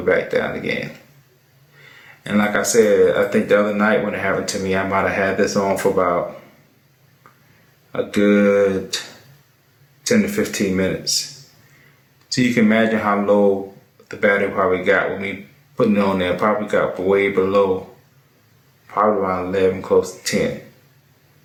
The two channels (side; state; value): both; identical; correlation 1.00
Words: back down again. And like I said, I think the other night when it happened to me, I might have had this on for about a good 10 to 15 minutes. So you can imagine how low the battery probably got with me putting it on there. Probably got way below, probably around 11, close to 10.